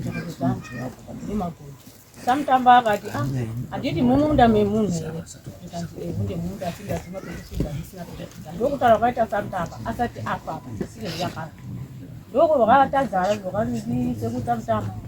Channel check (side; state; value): both; identical; correlation 1.00